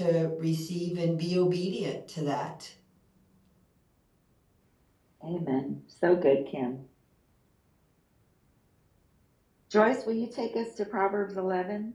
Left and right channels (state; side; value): identical; both; correlation 1.00